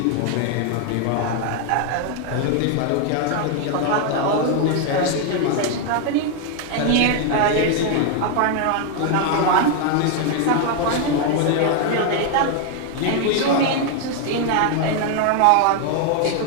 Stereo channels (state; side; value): different; both; correlation 0.01